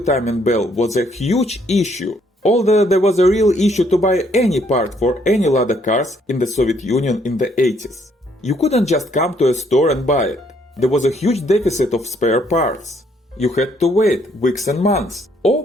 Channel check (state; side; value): normal; both; correlation 0.68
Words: belt was a huge issue, although there was a real issue to buy any part for any Lada cars in the Soviet Union in the 80s. You couldn't just come to a store and buy it. There was a huge deficit of spare parts. You had to wait weeks and months,